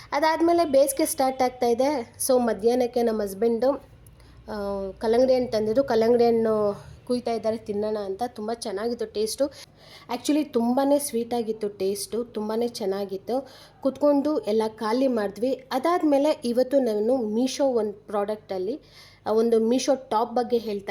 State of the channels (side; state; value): both; identical; correlation 1.00